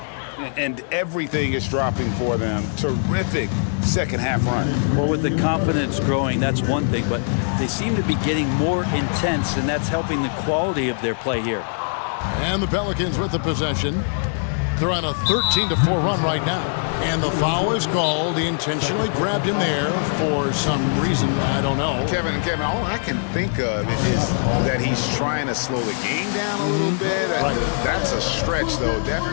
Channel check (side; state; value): right; silent; digital silence